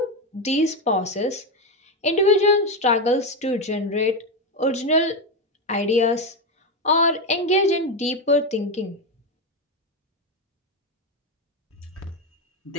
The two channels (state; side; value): normal; both; correlation 0.11